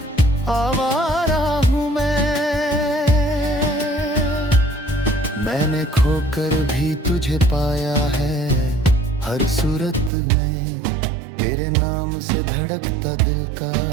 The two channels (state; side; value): drops out; left; at 10.1 s